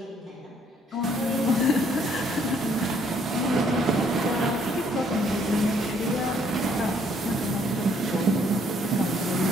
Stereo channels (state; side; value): normal; both; correlation 0.66